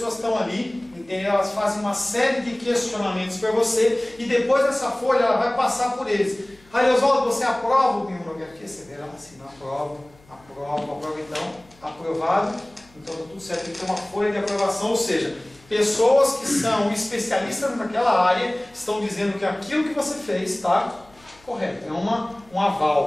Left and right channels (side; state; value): left; noise; hum, 28 dB below the sound